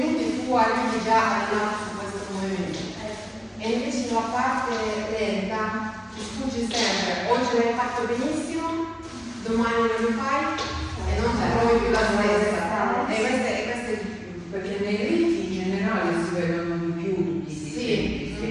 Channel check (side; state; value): both; identical; correlation 1.00